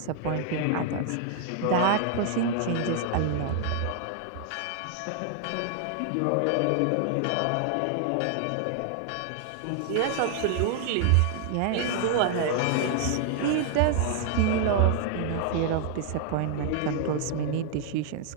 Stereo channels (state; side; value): different; both; correlation 0.00